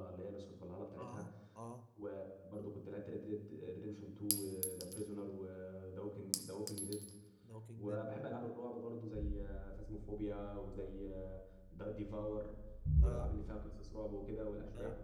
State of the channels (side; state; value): both; identical; correlation 1.00